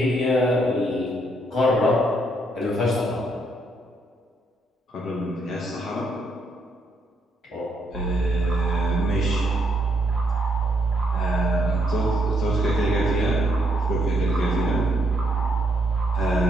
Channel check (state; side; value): normal; both; correlation 0.74